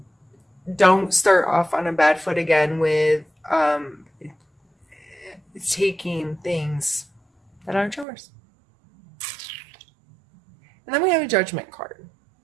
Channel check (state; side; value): drops out; left; at 8.1 s